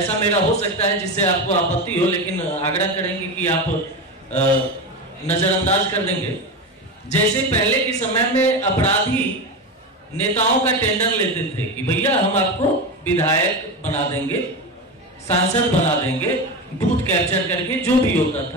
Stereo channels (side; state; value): both; normal; correlation 0.20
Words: मेरा हो सकता है जिससे आपको आपत्ति हो, लेकिन आग्रह करेंगे कि आप नजरअंदाज कर देंगे। जैसे पहले के समय में अपराधी नेताओं का टेंडर लेते थे कि भैया हम आपको विधायक बना देंगे, सांसद बना देंगे, बूथ कैप्चर करके, जो भी होता